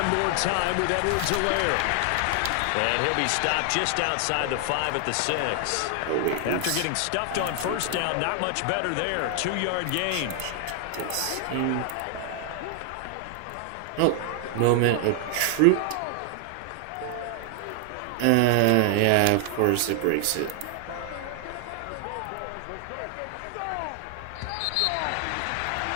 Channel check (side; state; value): both; different; correlation 0.00